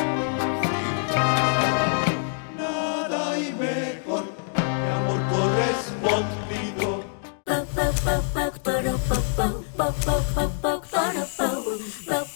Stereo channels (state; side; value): silent; right; digital silence